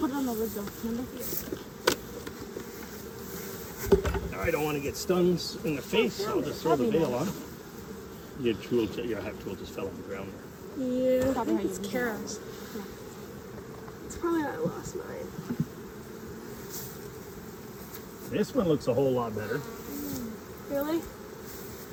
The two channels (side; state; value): both; identical; correlation 1.00